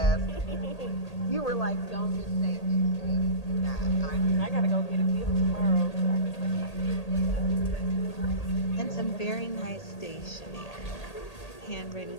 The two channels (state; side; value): late; right; 1.8 ms